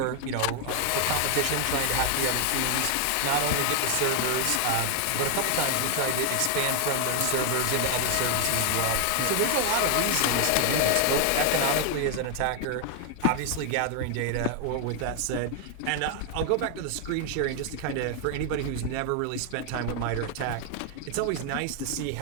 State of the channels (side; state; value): both; different; correlation 0.00